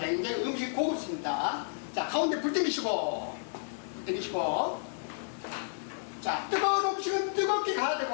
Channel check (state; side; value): silent; right; 57 dB below the other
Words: 음식이 고급습니다. 자, 가운데 불 땡기시고, 자, 뜨거운 음식은 뜨겁게 가야